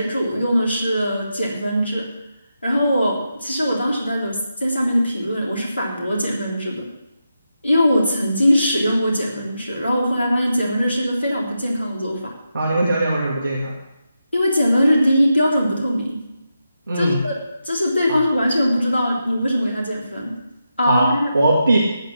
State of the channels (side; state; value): both; inverted; correlation -0.87